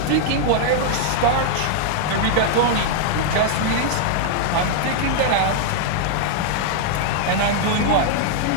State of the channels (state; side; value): different; both; correlation -0.01